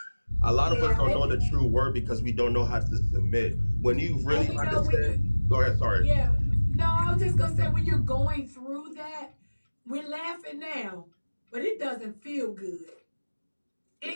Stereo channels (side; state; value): both; inverted; correlation -1.00